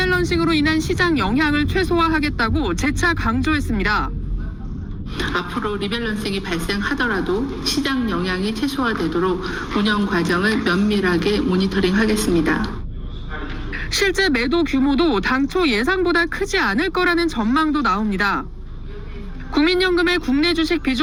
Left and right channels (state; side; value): identical; both; correlation 1.00